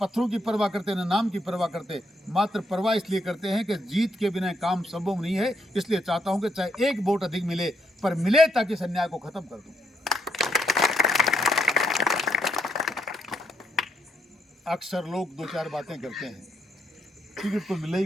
की परवाह करते, ना नाम की परवाह करते, मात्र परवाह इसलिए करते हैं कि जीत के बिना काम संभव नहीं है। इसलिए चाहता हूं कि चाहे एक वोट अधिक मिले, पर मिले ताकि इस अन्याय को खत्म कर दूं। अक्सर लोग 2-4 बातें करते हैं, टिकट तो मिले ही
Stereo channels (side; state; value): both; normal; correlation 0.76